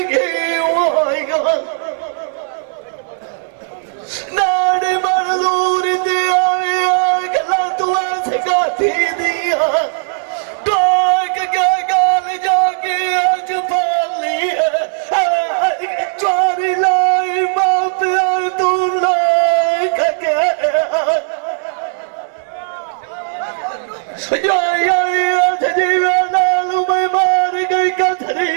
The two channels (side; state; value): left; silent; 68 dB below the other